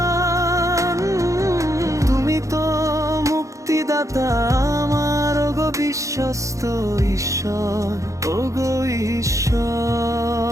তুমি তো মুক্তিদাতা আমার, ওগো বিশ্বস্ত ঈশ্বর, ওগো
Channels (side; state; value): left; late; 0.15 ms